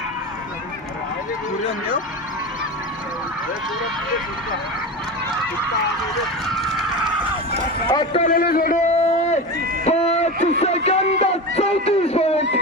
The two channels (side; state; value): both; normal; correlation 0.25